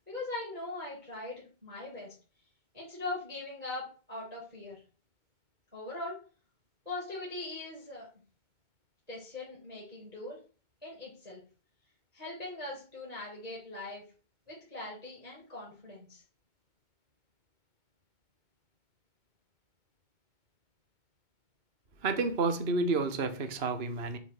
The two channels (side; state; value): left; late; 2.2 ms